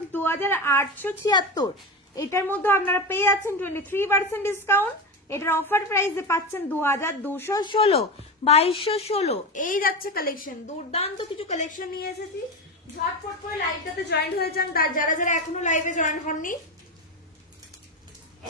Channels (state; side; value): normal; both; correlation 0.20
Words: 2876। এটার মধ্যে আপনারা পেয়ে যাচ্ছেন 23% ডিসকাউন্ট। এটার অফার প্রাইসে পাচ্ছেন 2216, 2216। এই যাচ্ছে কালেকশন, দুর্দান্ত কিছু কালেকশন নিয়ে এসেছি, ঝটপট করে লাইভটাতে জয়েন হয়ে যান যারা যারা এখনো লাইভে জয়েন হননি।